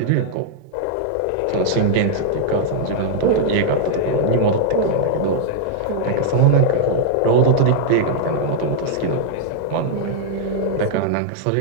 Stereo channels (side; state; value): both; different; correlation -0.01